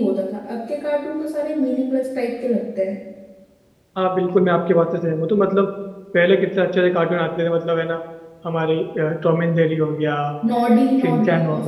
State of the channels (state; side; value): identical; both; correlation 1.00